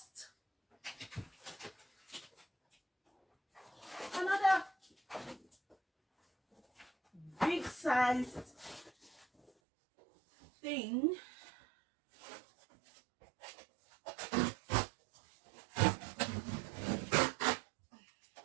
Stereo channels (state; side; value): drops out; left; at 9.5 s